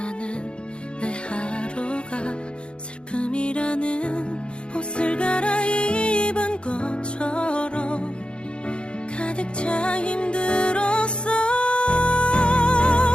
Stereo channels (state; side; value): late; right; 0.055 ms